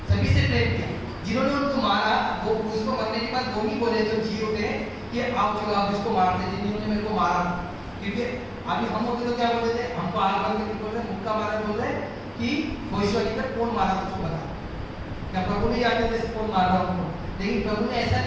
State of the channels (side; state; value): both; identical; correlation 1.00